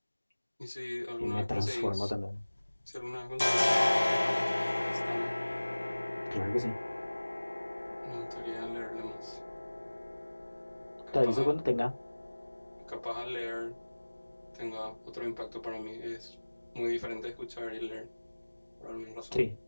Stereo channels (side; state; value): both; inverted; correlation -1.00